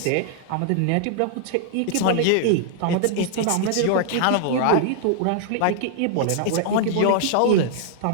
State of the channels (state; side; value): different; both; correlation -0.01